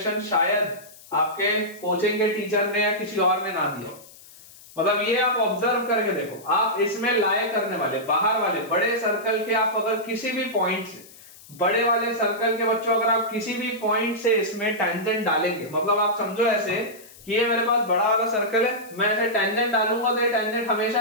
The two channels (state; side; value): noise; left; hiss, 21 dB below the sound